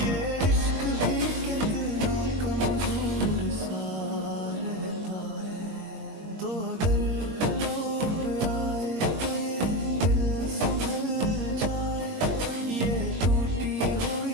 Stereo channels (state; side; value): late; left; 21 ms